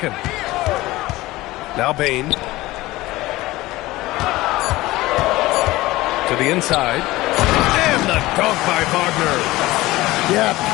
Now Bane. To the inside. And the dunk by Wagner. Yeah,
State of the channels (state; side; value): quieter; right; 18.6 dB